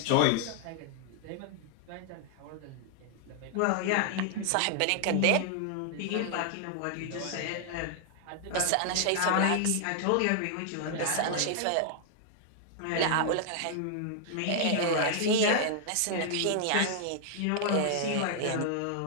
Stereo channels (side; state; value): both; different; correlation -0.01